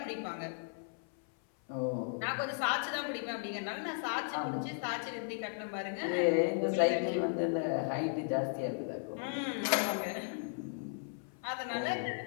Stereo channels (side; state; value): right; silent; 54 dB below the other